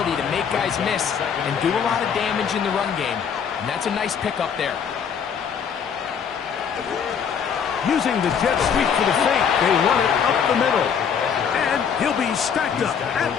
to make guys miss and do a lot of damage in the run game. And that's a nice pickup there. Using the jet sweep for the fake, they run it up the middle. And he'll be stacked up at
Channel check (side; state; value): right; quieter; 7.2 dB